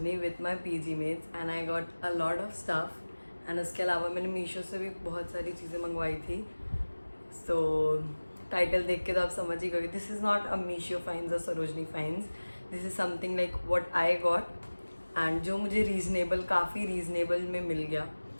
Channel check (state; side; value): inverted; both; correlation -1.00